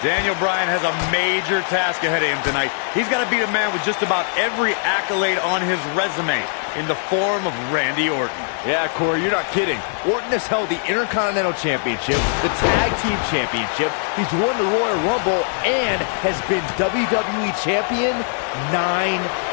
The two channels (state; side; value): silent; right; digital silence